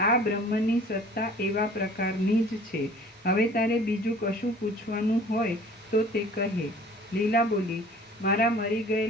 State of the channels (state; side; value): normal; both; correlation 0.49